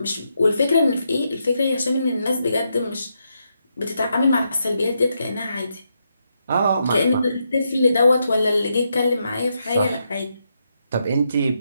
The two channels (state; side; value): inverted; both; correlation -0.81